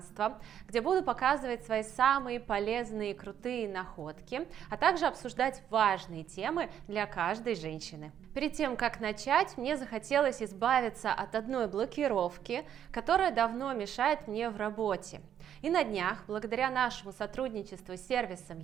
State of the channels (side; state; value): left; quieter; 9.7 dB